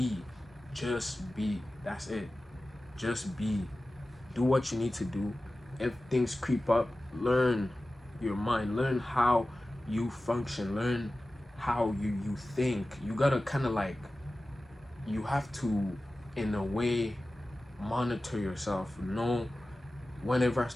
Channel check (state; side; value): normal; both; correlation 0.96